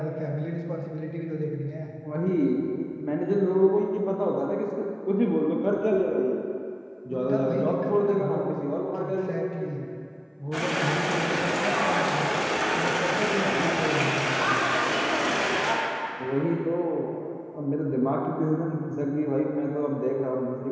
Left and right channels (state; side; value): identical; both; correlation 1.00